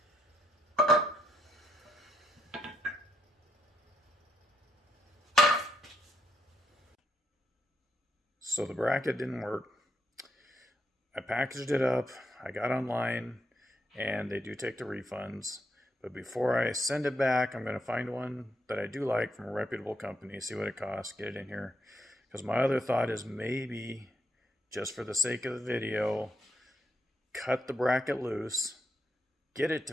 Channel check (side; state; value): both; normal; correlation 0.78